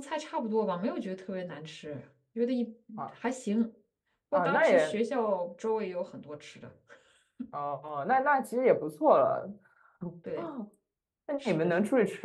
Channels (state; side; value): identical; both; correlation 1.00